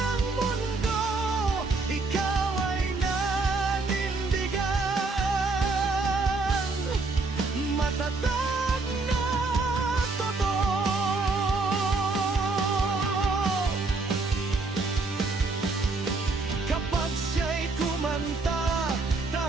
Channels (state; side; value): quieter; left; 3.7 dB